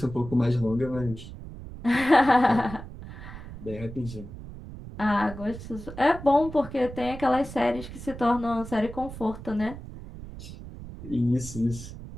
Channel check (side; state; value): right; noise; rumble, 12 dB below the sound